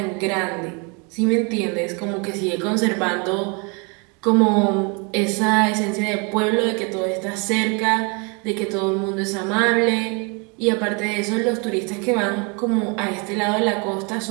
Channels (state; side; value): quieter; left; 31.8 dB